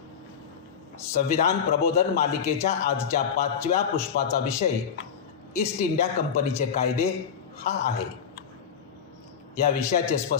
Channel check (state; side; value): quieter; right; 7.3 dB